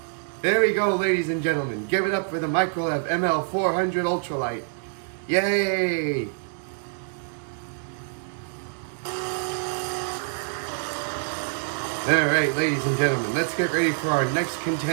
There we go, ladies and gentlemen. Give it up for the Microlev ML400 Ultralight. Yay! All right, ladies and gentlemen, let's get ready for our next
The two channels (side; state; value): left; silent; digital silence